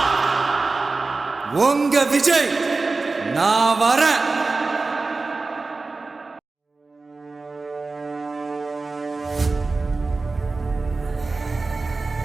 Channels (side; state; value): left; quieter; 3.7 dB